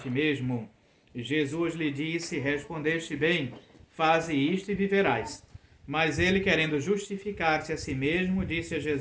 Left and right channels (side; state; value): both; identical; correlation 1.00